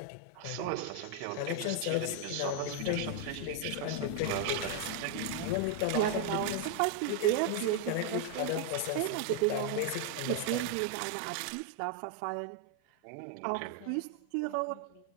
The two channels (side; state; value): both; different; correlation 0.00